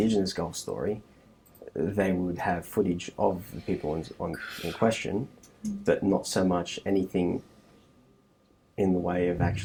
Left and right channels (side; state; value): both; identical; correlation 1.00